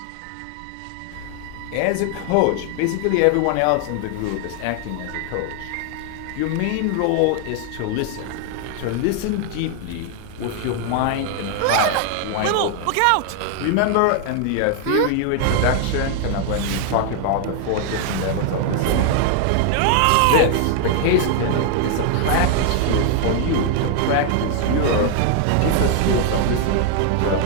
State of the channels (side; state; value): both; different; correlation 0.00